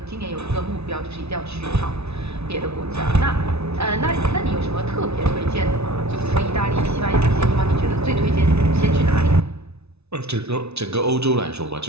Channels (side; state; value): left; late; 0.80 ms